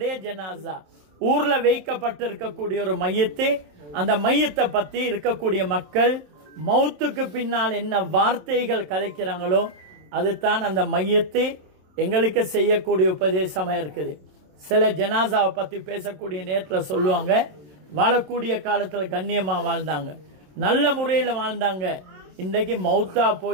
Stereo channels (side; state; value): left; late; 27 ms